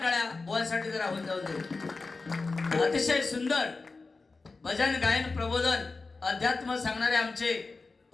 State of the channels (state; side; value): quieter; right; 3.9 dB